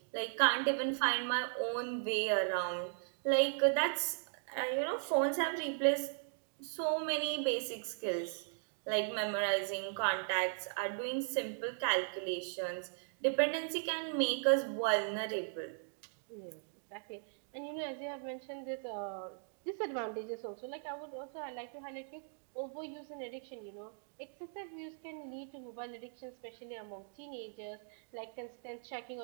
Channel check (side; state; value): left; silent; digital silence